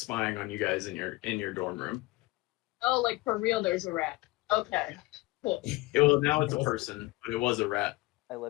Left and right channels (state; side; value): quieter; right; 21.2 dB